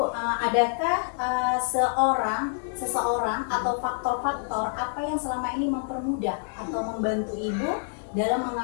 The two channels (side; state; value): right; silent; digital silence